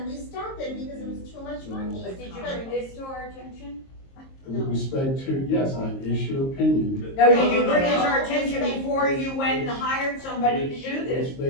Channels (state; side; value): late; right; 22 ms